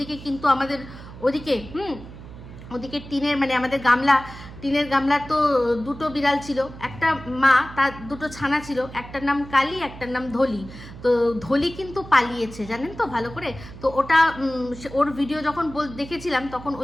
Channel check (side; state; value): right; noise; hum, 15 dB below the sound